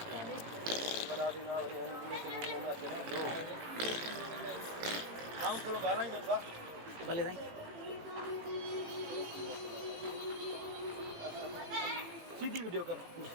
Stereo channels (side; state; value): left; late; 18 ms